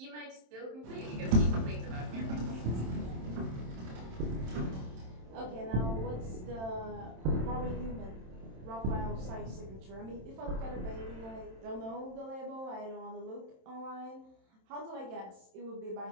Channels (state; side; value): late; left; 27 ms